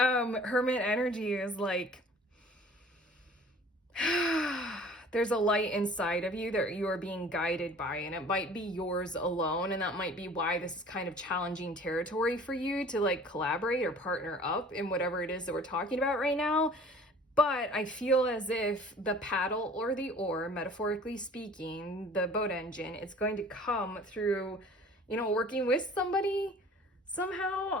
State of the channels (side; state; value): both; normal; correlation 0.48